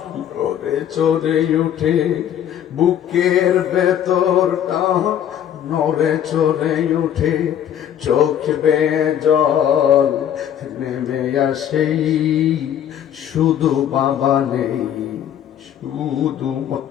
নড়ে চড়ে উঠে, বুকের ভেতরটা নড়ে চড়ে উঠে, চোখ বেয়ে জল নেমে আসে, শুধু বাবা নেই শুধু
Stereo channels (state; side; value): quieter; right; 10.0 dB